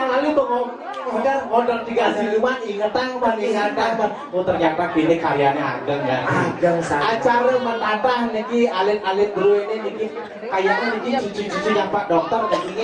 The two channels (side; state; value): both; identical; correlation 1.00